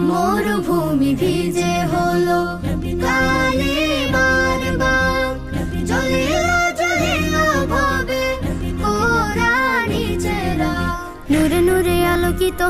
মরুভূমি ভিজে হলো কালিমার বাগ, জ্বলিল জ্বলিল ভাবে কোরআনি চেরা। নূরে নূরে আলোকিত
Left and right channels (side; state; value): both; identical; correlation 1.00